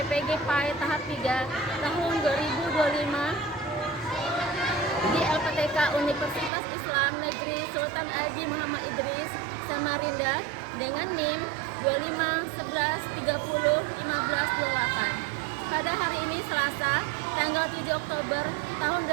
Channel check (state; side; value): drops out; left; at 6.5 s